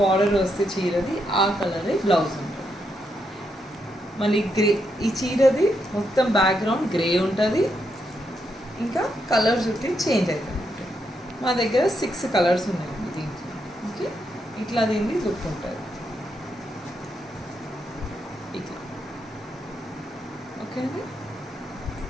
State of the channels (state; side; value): normal; both; correlation 0.81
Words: వస్తే చీరది ఆ కలరే బ్లౌజ్ ఉంటుంది। మళ్ళీ గ్రే, ఈ చీరది మొత్తం బ్యాక్గ్రౌండ్ గ్రే ఉంటుంది, ఇంకా కలర్స్ ఉంటే చేంజ్ అవుతుంది। మా దగ్గర 6 కలర్స్ ఉన్నాయండి దీంట్లో। ఓకే, ఇట్లా దీన్ని లుక్ ఉంటుంది ఇట్లా। ఓకే అండి,